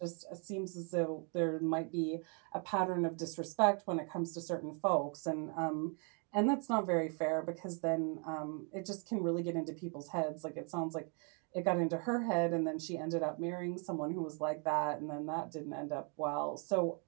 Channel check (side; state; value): left; quieter; 38.4 dB